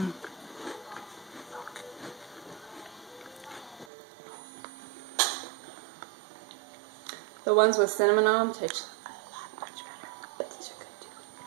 The ones with cinnamon on them taste a lot much better, but these are good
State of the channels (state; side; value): drops out; left; at 3.9 s